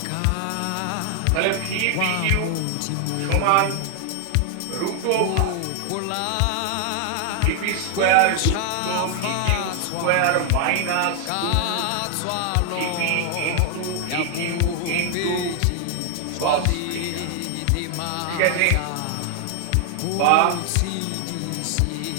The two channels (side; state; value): both; different; correlation 0.00